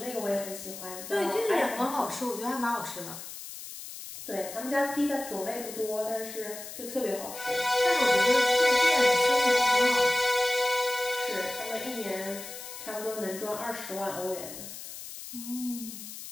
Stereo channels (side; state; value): left; noise; hiss, 11 dB below the sound